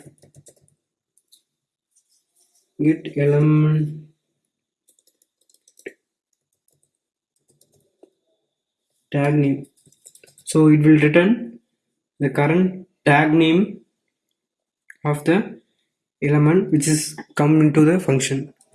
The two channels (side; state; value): both; identical; correlation 1.00